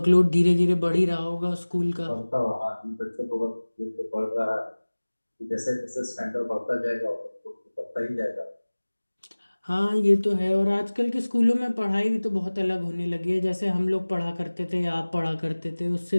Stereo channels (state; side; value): inverted; both; correlation -1.00